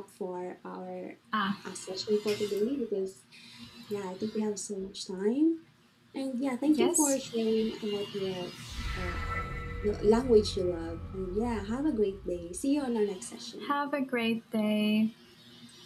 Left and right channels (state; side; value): identical; both; correlation 1.00